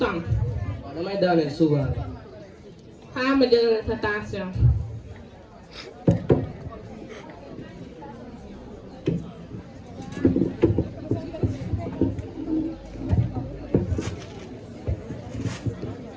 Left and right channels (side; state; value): both; identical; correlation 1.00